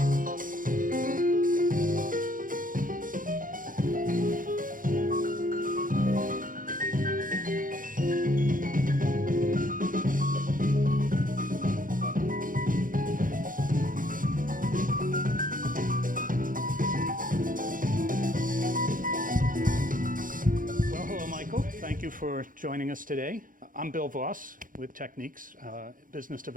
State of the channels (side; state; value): left; late; 0.40 ms